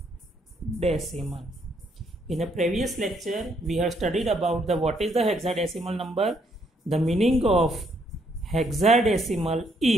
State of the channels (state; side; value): normal; both; correlation 0.72